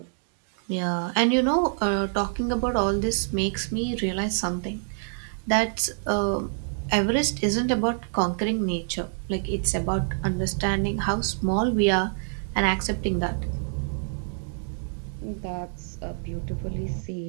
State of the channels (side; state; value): left; silent; digital silence